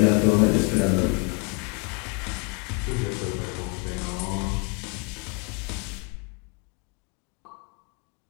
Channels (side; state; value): right; quieter; 32.4 dB